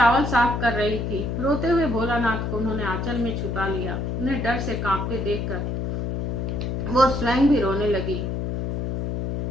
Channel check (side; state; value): left; noise; hum, 2 dB below the sound